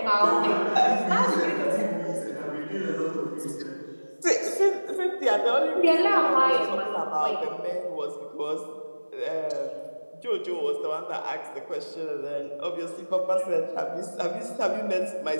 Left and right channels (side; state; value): both; inverted; correlation -1.00